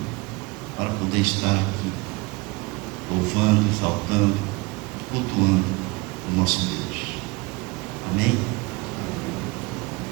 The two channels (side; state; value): left; quieter; 24.7 dB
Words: para poder estar aqui louvando, exaltando, cultuando o nosso Deus. Amém?